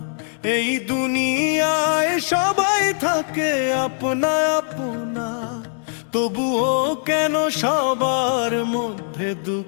এই দুনিয়ায় সবাই থাকে আপনা আপনা তবুও কেন সবার মধ্যে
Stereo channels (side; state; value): right; silent; digital silence